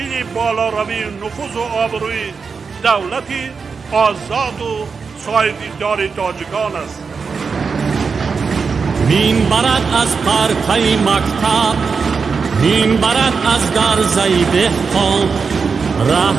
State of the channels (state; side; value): quieter; left; 5.3 dB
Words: بالا روی نفوذ و آبروی دولتی آزاد و سایه‌دار تاجیکان است. مین برد از پرتای مکتب، مین برد از گرزه دهقان،